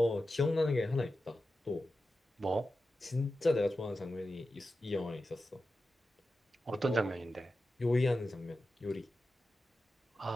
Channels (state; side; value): normal; both; correlation 0.92